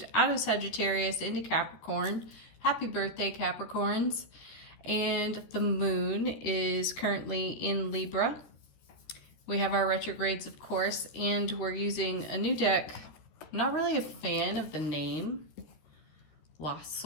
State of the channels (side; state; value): right; late; 13 ms